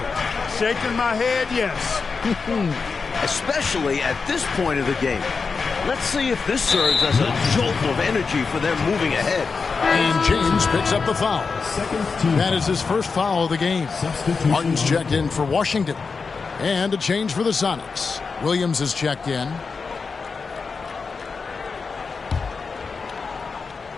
Shaking my head, yes. Especially at this point of the game. Let's see if this serves as a jolt of energy for them moving ahead. And James picks up the foul. That is his first foul of the game. Martin's checked in for Washington. And a change for the Sonics. Williams is checked in.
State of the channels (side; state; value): right; quieter; 4.9 dB